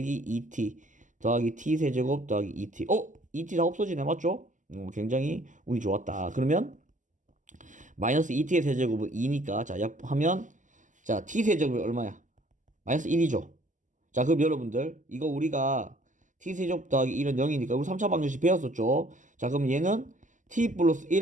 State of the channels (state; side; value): late; left; 0.37 ms